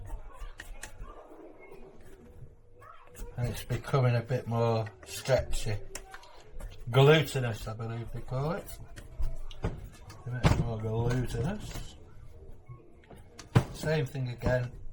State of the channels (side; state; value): both; identical; correlation 1.00